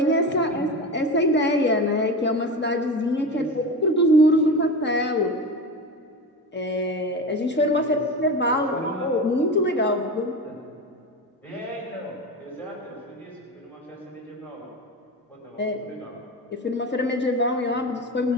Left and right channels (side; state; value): both; normal; correlation 0.25